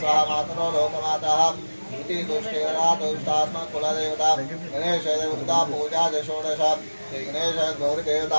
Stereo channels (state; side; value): inverted; both; correlation -1.00